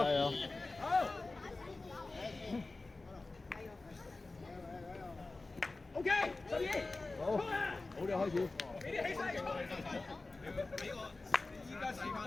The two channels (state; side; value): quieter; right; 3.3 dB